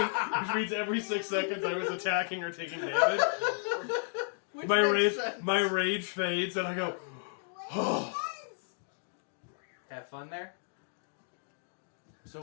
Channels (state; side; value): silent; right; digital silence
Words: which means every 6 seconds I was attacking or taking damage. My rage fades, and I go, oh. Have fun there. So